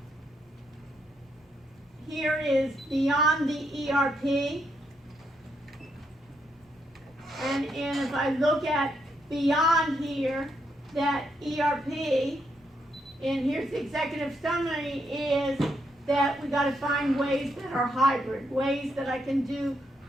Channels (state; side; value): normal; both; correlation 0.78